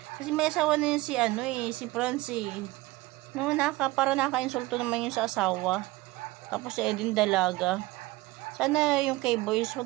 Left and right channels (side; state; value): left; quieter; 19.5 dB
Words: Kasi may asawa na yun si Franz eh. No, para naka-insulto naman yun sa asawa. Tapos si Eden dalaga. Sana yung kay Boys,